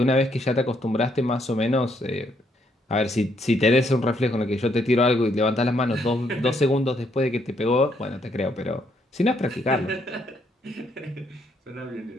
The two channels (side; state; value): both; normal; correlation 0.72